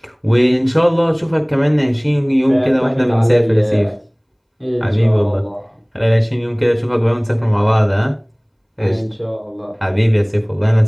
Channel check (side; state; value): both; identical; correlation 1.00